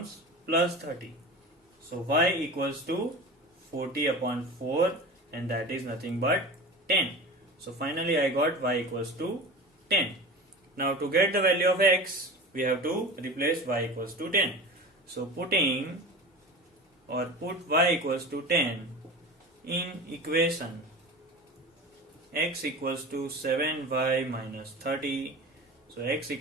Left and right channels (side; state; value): both; normal; correlation 0.33